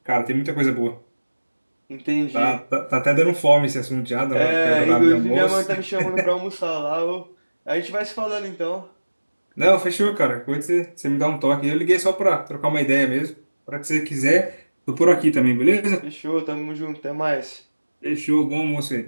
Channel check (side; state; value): both; inverted; correlation -1.00